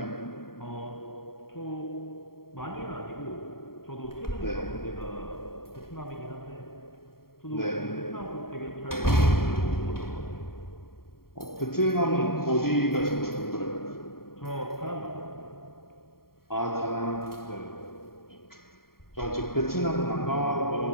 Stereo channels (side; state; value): right; late; 0.93 ms